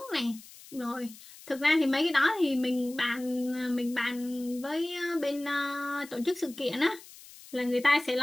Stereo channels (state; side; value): noise; left; hiss, 19 dB below the sound